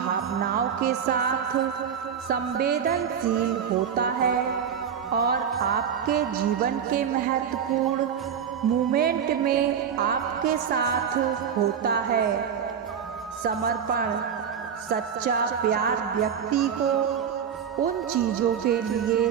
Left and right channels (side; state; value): left; quieter; 7.8 dB